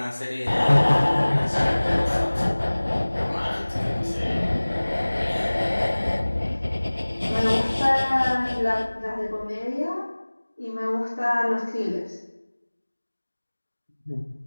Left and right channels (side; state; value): both; inverted; correlation -1.00